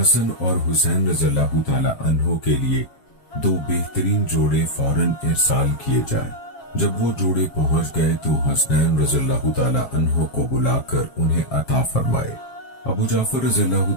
اور حسین رضی اللہ تعالی عنہ کے لیے 2 بہترین جوڑے فوراً ارسال کیے جائیں۔ جب وہ جوڑے پہنچ گئے تو حسنین رضی اللہ تعالی عنہ کو بلا کر انہیں عطا فرمائے۔ ابو جعفر رضی اللہ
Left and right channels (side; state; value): right; late; 7.4 ms